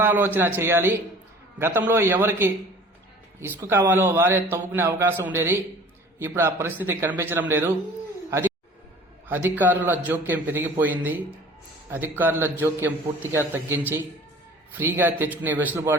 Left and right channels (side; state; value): both; normal; correlation 0.46